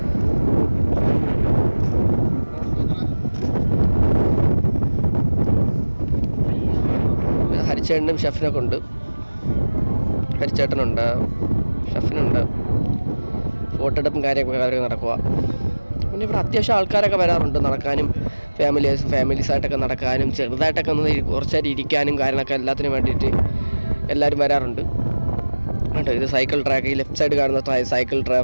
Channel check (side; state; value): both; inverted; correlation -1.00